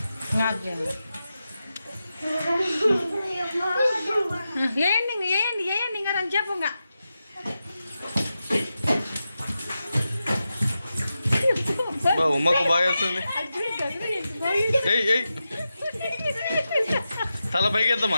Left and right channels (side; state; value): both; inverted; correlation -0.90